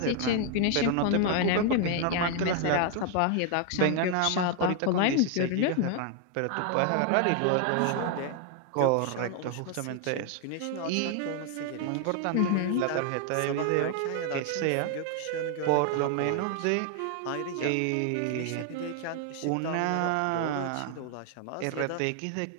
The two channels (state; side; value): different; both; correlation 0.00